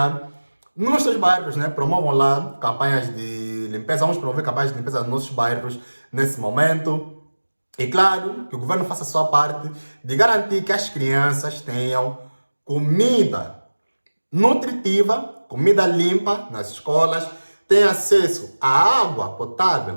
nos seus bairros, né, promovam lá campanhas de limpeza. Vamos promover campanhas de limpeza nos nossos bairros nesse momento. E claro, que o governo faça a sua parte de garantir que as crianças tenham comida nutritiva, comida limpa nas escolas, tenham acesso à água potável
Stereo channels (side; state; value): both; inverted; correlation -1.00